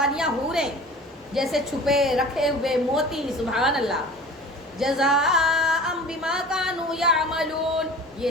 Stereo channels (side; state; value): both; normal; correlation 0.41